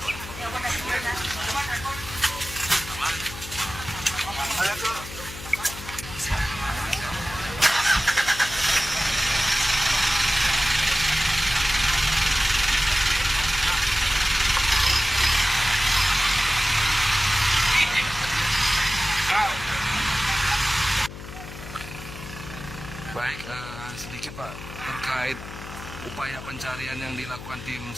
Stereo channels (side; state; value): left; noise; hum, 12 dB below the sound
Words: Ayo tuh. Baik, sedikit Pak terkait upaya pencarian yang dilakukan tim